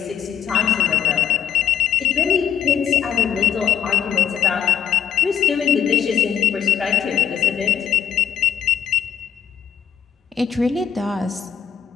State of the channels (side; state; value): right; quieter; 8.7 dB